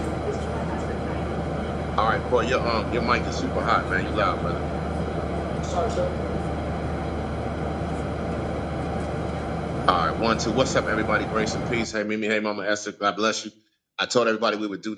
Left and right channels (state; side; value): identical; both; correlation 1.00